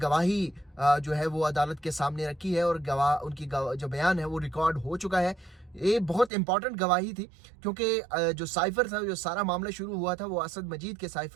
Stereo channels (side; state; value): left; drops out; at 6.3 s